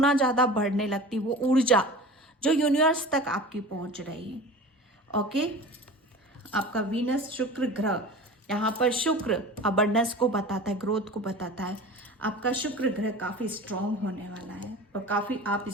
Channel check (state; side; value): normal; both; correlation 0.36